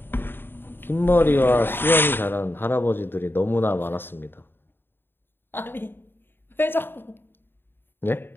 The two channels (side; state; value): right; late; 0.10 ms